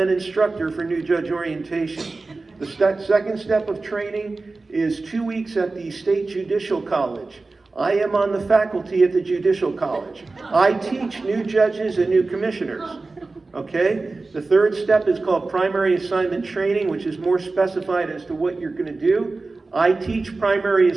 instructor for new judge orientation. The second step of training is 2 weeks at the State Judicial College. I am on the faculty at the Judicial College. I teach new judges and new commissioners. Okay? The third step is called primary assignment training, which is more specified as to what you're going to do. I teach primary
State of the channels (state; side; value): quieter; left; 3.6 dB